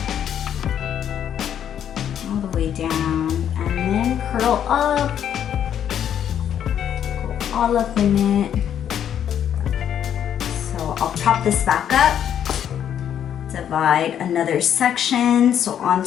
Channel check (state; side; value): quieter; right; 9.5 dB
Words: All the way down, and then curl up. Go all up in it. So I'll prop this back up. Divide another section, so